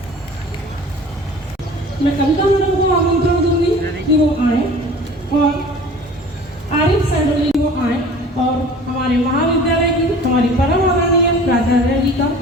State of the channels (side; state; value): both; normal; correlation 0.44